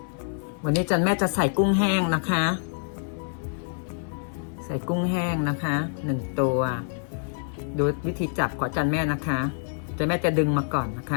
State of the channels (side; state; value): right; silent; 61 dB below the other